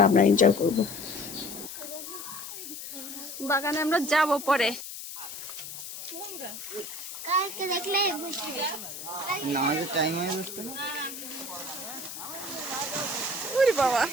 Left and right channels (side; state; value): left; noise; hiss, 10 dB below the sound